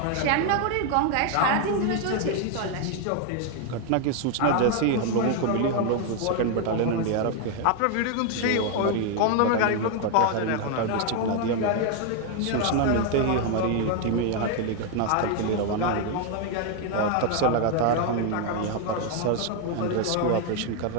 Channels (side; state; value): both; different; correlation 0.01